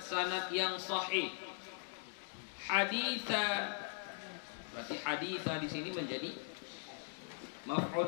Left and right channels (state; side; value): silent; right; digital silence